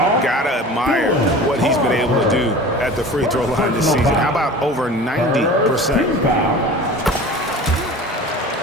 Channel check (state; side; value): normal; both; correlation 0.38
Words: Gotta admire what he's been able to do at the free throw line this season. How about over 90%?